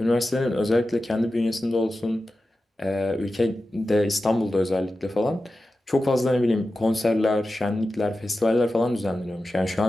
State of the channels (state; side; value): normal; both; correlation 0.93